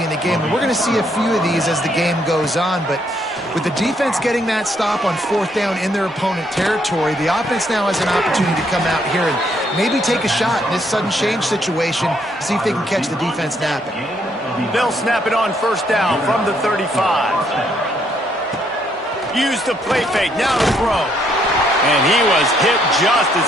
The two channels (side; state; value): both; normal; correlation 0.71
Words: in the game, and we're going to see a few of these as the game goes on, but with the defense getting that stop on 4th down in their opponent territory, the offense now has an opportunity to come out here and maybe take a shot in this sudden change situation, see if they can catch the defense napping. They'll snap it on 1st down from the 35. Use the play fake, now to throw. And he was hit just as